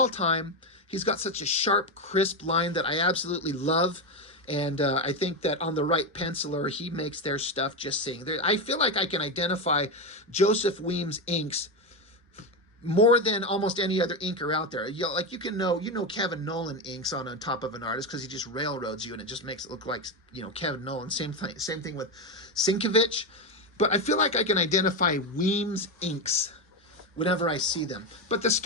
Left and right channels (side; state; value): both; normal; correlation 0.12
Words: time. He's got such a sharp, crisp line that I absolutely love. And I think that on the right penciler, he makes their stuff just sing. I feel like I can identify Joseph Weems inks more than almost any other inker out there. You know Kevin Nolan inks on top of an artist because he just railroads you and it just makes it look like, Kevin Nolan. Same thing with Sienkiewicz. But I feel like I can identify Weems inks whenever I see them. But the